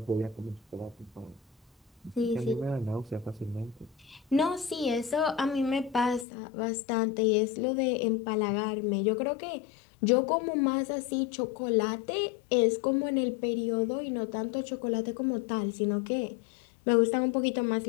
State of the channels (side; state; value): right; drops out; at 6.2 s